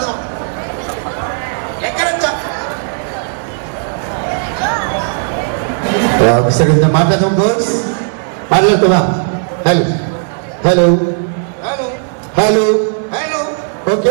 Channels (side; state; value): left; silent; digital silence